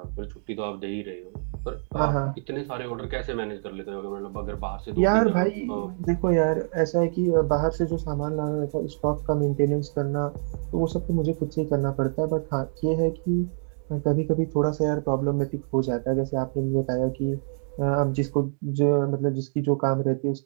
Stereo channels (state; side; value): silent; left; 61 dB below the other